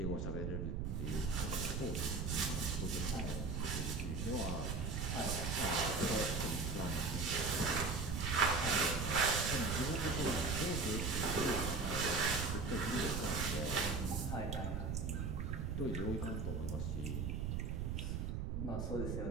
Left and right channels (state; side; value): noise; right; rumble, 1 dB below the sound